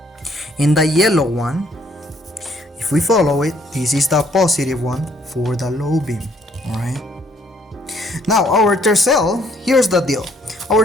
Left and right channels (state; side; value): normal; both; correlation 0.65